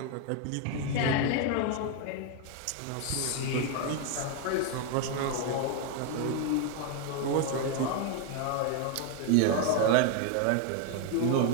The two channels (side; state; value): both; different; correlation 0.01